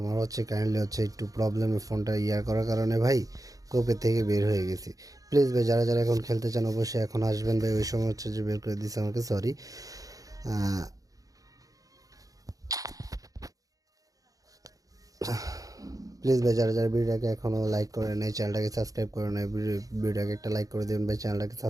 হচ্ছে কাইন্ডলি হচ্ছে একটু প্রবলেমে ফোনটা করার কারণে ভাই কোপের থেকে বের হয়ে গেছি। প্লিজ ভাই, যারা যারা এখন খেলতে চান অবশ্যই এখন আসবেন ভাই, ওই সময় হচ্ছে যে বের করে দিচ্ছে আমাকে, সরি। প্লিজ ভাই যারা যারা ভিডিওটাকে এখনও লাইক করে নেই চ্যানেলটাকে সাবস্ক্রাইব করে নেই ভিডিওটাকে একটা লাইক করে দেবেন ভাই চ্যানেলটাকে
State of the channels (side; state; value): left; late; 0.17 ms